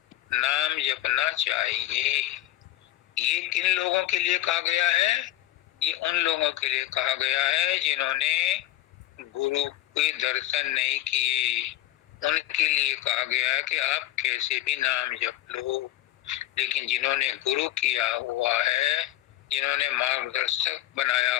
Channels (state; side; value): quieter; right; 14.8 dB